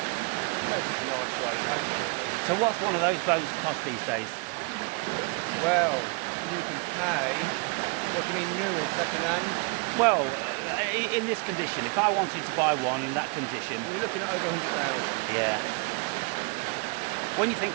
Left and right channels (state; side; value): quieter; left; 31.4 dB